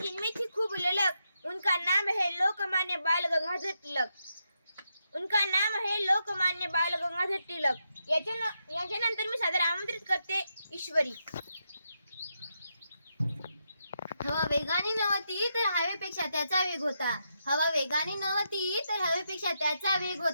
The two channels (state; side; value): inverted; both; correlation -0.83